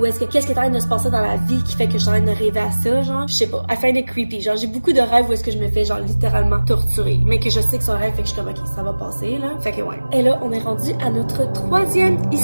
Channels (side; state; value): both; inverted; correlation -1.00